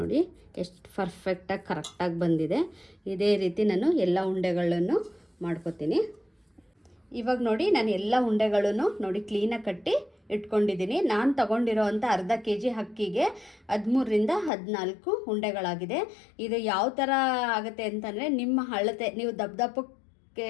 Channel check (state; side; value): drops out; right; at 14.5 s